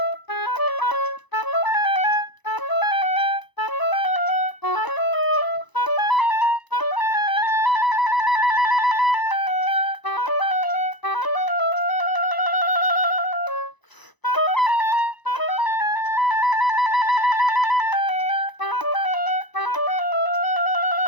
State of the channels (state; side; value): late; right; 1.0 ms